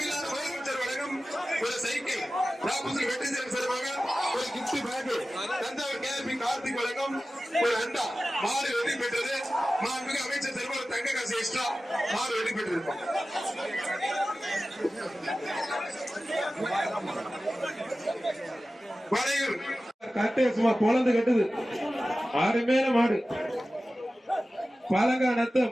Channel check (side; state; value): both; normal; correlation 0.95